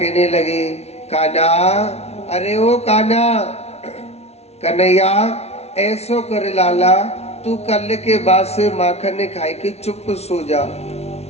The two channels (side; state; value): right; late; 0.31 ms